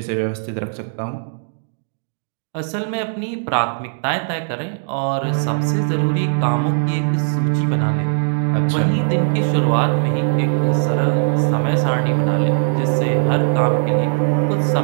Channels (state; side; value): silent; left; digital silence